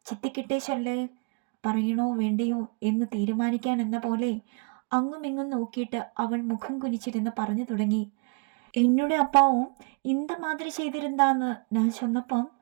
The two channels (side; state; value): left; quieter; 35.0 dB